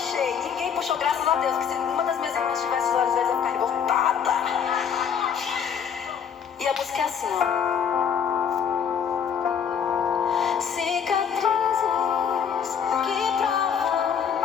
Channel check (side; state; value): right; quieter; 7.5 dB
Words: Ninguém puxou, graças a Deus. Porque se uma das minhas irmãs tivesse os olhos verdes, eu ia ficar revoltada. E a música é assim, ó. Cicatrizes que provam